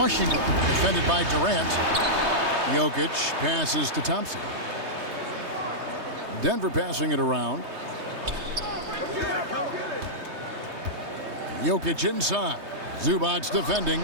defended by Durant. Jokic passes to Thompson. Denver passing it around. Jokic inside. Zubac's defending.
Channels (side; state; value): left; late; 3.2 ms